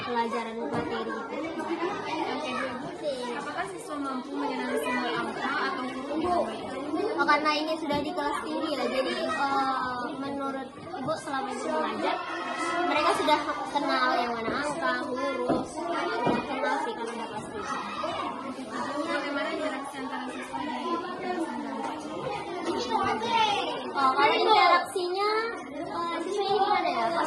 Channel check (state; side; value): identical; both; correlation 1.00